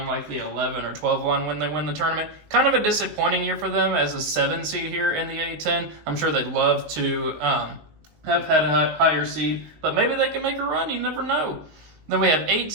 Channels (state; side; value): late; left; 19 ms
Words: like the 11 or 12 line when they win the tournament. Kind of a disappointing year for them as a 7 seed here in the A10. I'm sure they'd love to have had a higher seed, but maybe they can make a run. You never know. Then we have 8